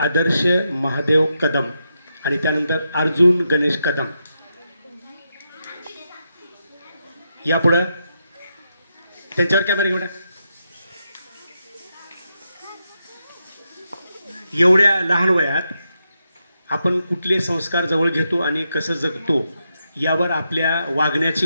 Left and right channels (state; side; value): inverted; both; correlation -0.84